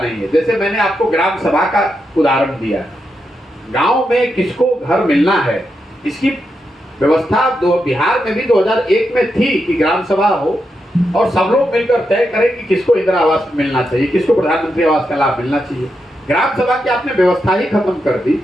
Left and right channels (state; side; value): normal; both; correlation 0.85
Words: नहीं है। जैसे मैंने आपको ग्राम सभा का उदाहरण दिया, गांव में किसको घर मिलना है, इसकी व्यवस्था बिहार में भी 2001 में थी कि ग्राम सभा हो और सब लोग मिलकर तय करें कि किसको इंदिरा आवास मिलना चाहिए, किसको प्रधानमंत्री आवास का लाभ मिलना चाहिए। ग्राम सभा की आपने व्यवस्था ही खत्म कर दी